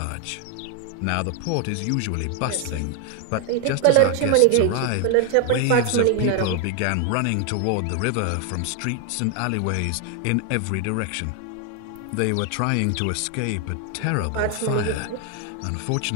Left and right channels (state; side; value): different; both; correlation 0.01